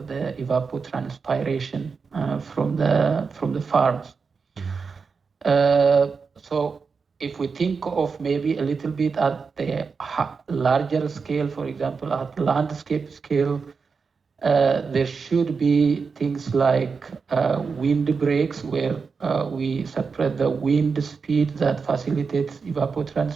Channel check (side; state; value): left; quieter; 5.2 dB